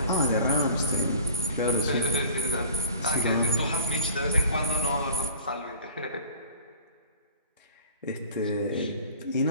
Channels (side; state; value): both; inverted; correlation -0.47